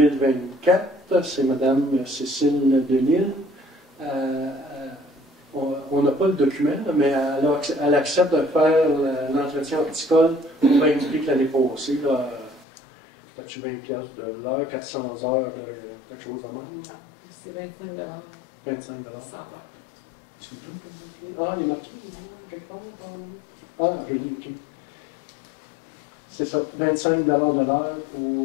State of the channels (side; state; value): right; drops out; at 12.7 s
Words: c'est Mme Cécile Delisle. On n'a pas le document, mais elle accepte de faire l'entretien horticole au même prix que l'année passée. As-tu 20$ de l'heure, 400 heures, quelque chose de même? C'est 25$. 25 100 $. Ah, il est marqué quelque part. Ah, je l'ai, OK. C'est ça, 25 $ de l'heure